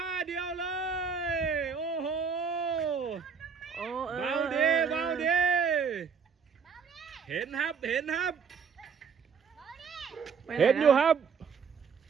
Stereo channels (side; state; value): left; quieter; 6.1 dB